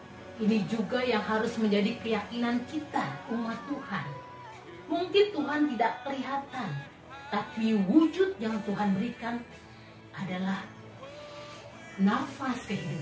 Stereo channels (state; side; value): identical; both; correlation 1.00